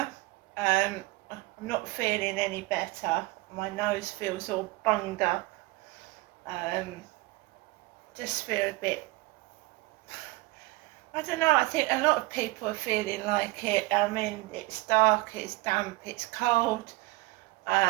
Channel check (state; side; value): quieter; left; 21.7 dB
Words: I'm not feeling any better. My nose feels all bunged up. Just feel a bit, I don't know, I think a lot of people are feeling like it. I mean, it's dark, it's damp, it's cold.